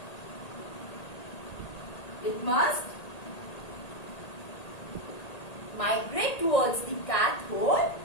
It must migrate towards the cathode,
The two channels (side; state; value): right; late; 1.8 ms